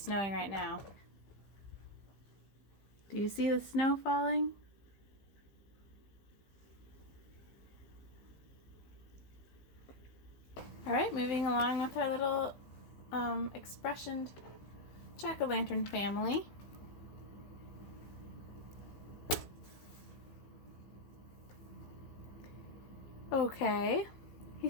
snowing right now. Do you see the snow falling? Alright, moving along with our little expressioned jack-o'-lantern family. Okay, he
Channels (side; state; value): right; late; 15 ms